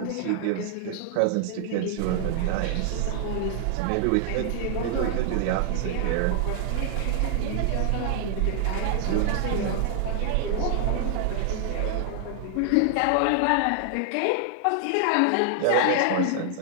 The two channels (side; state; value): both; different; correlation 0.00